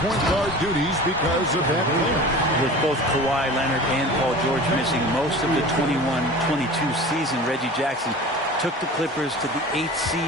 guard duties because of that playoff. With both Kawhi Leonard and Paul George missing most of the 21-22 season, Reggie Jackson took the Clippers to the 8th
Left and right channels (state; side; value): normal; both; correlation 0.37